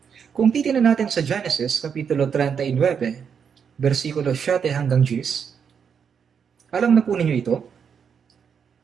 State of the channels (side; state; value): left; quieter; 7.0 dB